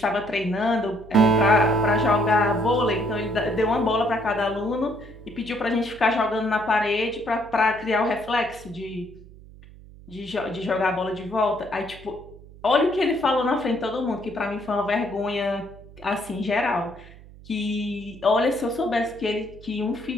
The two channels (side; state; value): right; noise; hum, 20 dB below the sound